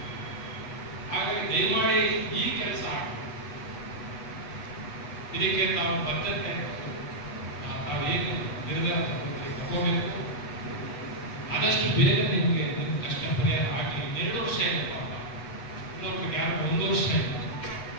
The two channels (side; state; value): right; late; 8.1 ms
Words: ಹಾಗಾಗಿ ದಯಮಾಡಿ ಈ ಕೆಲಸ ಇದಕ್ಕೆ ತಾವು ಬದ್ಧತೆ ತಾವೇನು ನಿರ್ಧಾರ ತಗೋಬೇಕು, ಆದಷ್ಟು ಬೇಗ ನಿಮಗೆ ಕಷ್ಟ ಪರಿಹಾರ ಹಾಕಿ. 2 ವರ್ಷ ಇಲ್ಲ ಪಾಪ, ಇನ್ನೊಬ್ರಿಗೆ ಯಾರು 1 ವರ್ಷ ಇಲ್ಲ,